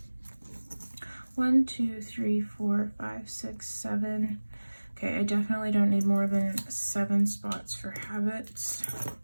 1, 2, 3, 4, 5, 6, 7. Okay, I definitely don't need more than 7 spots for habits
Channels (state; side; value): inverted; both; correlation -1.00